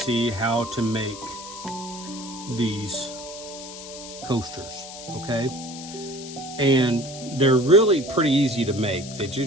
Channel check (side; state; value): left; noise; hiss, 13 dB below the sound